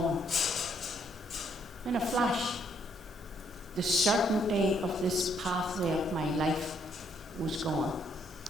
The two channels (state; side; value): normal; both; correlation 0.70